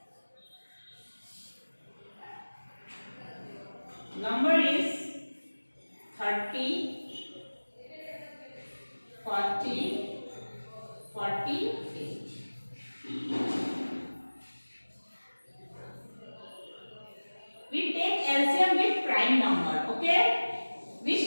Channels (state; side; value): inverted; both; correlation -1.00